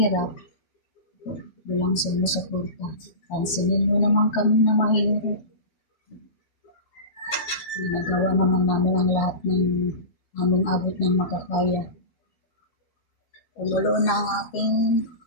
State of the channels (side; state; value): right; late; 13 ms